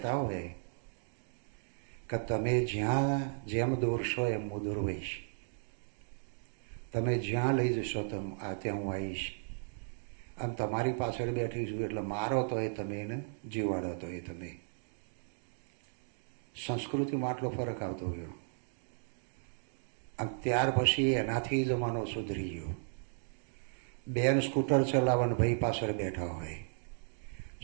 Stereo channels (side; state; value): left; silent; digital silence